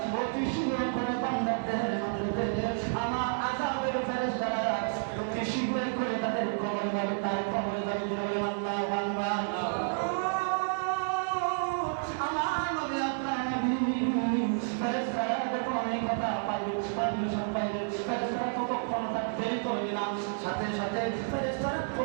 অতি শীঘ্র করে বান্দার দেহের মধ্যে দে। আমার আযাবের ফেরেশতারা অতি শীঘ্র করে তাদের কবরে যাবে, তার কবরে যাবে। দিলে বলেন আল্লাহু আকবার। আমার নবী আপনার নবী ফেরেশতারা যখন অনেক কথা পাইবে, পারমিশন পাইবে, ফেরেশতারা কতক্ষণ তার দেরি করবে না, সাথে সাথে ফেরেশতারা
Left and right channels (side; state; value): left; silent; 57 dB below the other